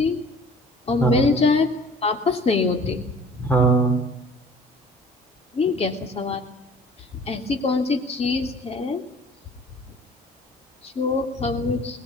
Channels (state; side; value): normal; both; correlation 0.49